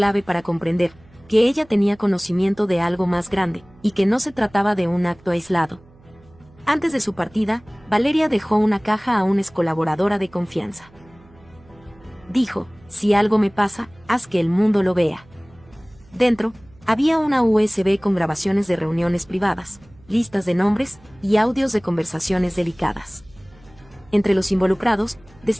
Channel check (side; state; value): right; noise; hum, 27 dB below the sound